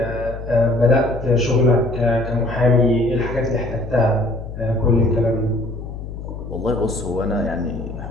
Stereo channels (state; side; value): noise; left; hum, 10 dB below the sound